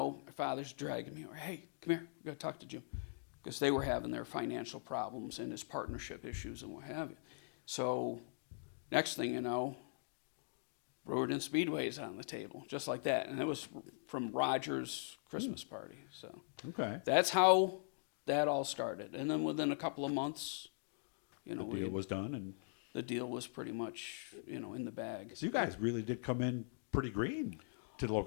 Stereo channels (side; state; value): right; silent; digital silence